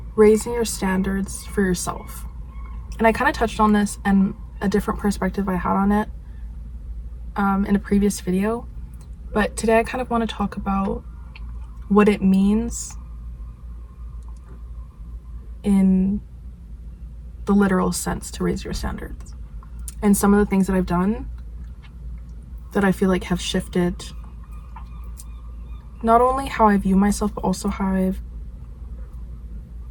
raising your standards for yourself. And I kind of touched on this and a different perspective I had on it in a previous video. But today I kind of want to talk about what it means in the literal sense to raise your standards. And some of the things that I've done that I feel like have shifted not only how I view myself, but also how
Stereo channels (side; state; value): both; identical; correlation 1.00